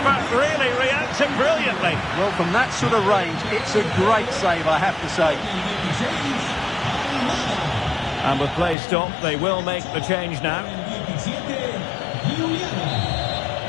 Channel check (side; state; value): right; drops out; at 8.8 s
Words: really reacting brilliantly. Well, from that sort of range, it's a great save, I have to say. And with play stopped, they will make the change now.